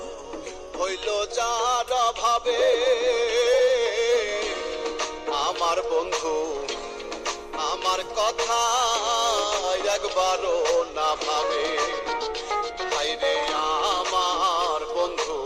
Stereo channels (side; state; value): both; identical; correlation 1.00